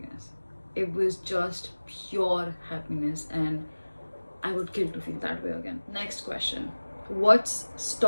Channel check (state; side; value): inverted; both; correlation -1.00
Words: It was just pure happiness, and I would kill to feel that way again. Next question. What's